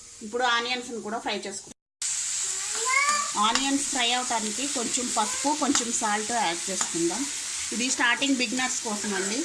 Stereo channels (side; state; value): both; identical; correlation 1.00